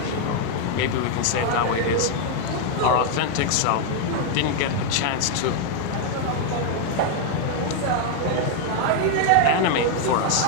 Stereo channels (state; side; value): different; both; correlation 0.00